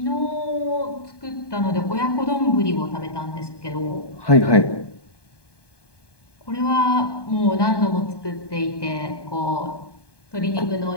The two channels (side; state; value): right; late; 1.2 ms